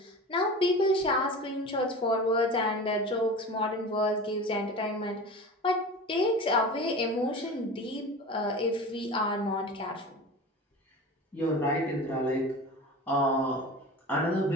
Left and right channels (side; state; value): both; normal; correlation 0.33